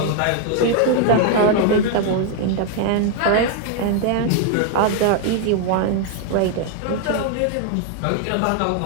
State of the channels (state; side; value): different; both; correlation 0.00